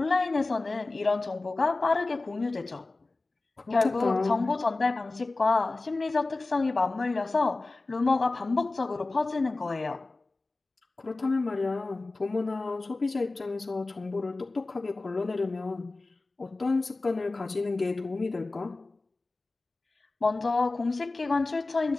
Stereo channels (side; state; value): right; quieter; 3.3 dB